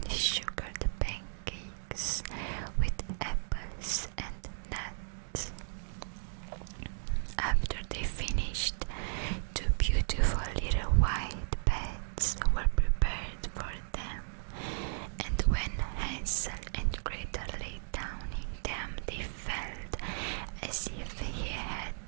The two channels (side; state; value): left; silent; digital silence